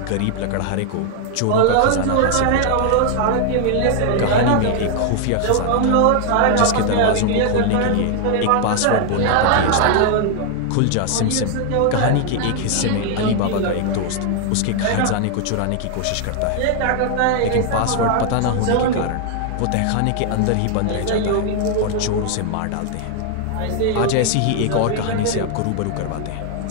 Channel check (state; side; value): different; both; correlation 0.00